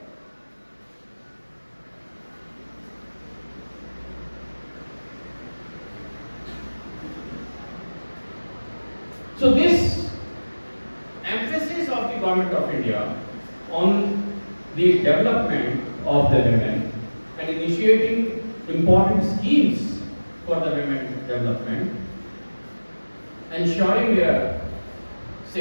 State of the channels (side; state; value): both; inverted; correlation -1.00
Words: So this emphasis of the Government of India on the development of the women and initiating important schemes for the women development, ensuring their